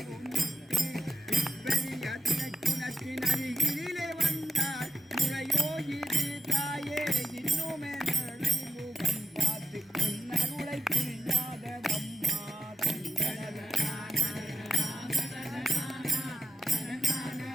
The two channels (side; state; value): both; normal; correlation 0.87